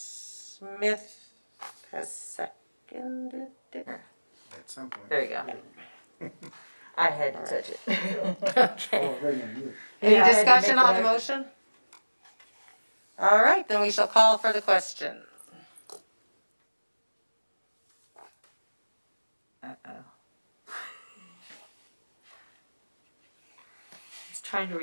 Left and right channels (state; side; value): inverted; both; correlation -1.00